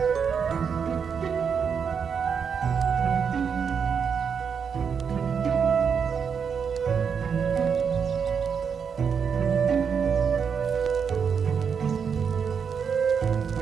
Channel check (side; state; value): left; quieter; 6.6 dB